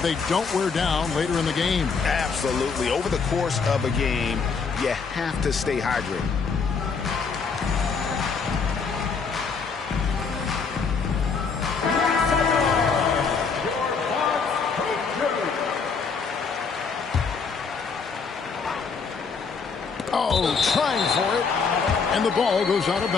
don't wear down later in the game. Absolutely. Over the course of a game, you have to stay hydrated. Oh, trying for it. And the ball goes out of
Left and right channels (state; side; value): quieter; right; 5.3 dB